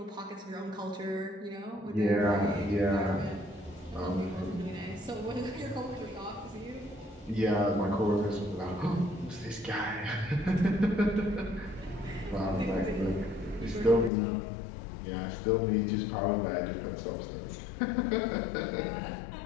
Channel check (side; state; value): right; drops out; at 14.1 s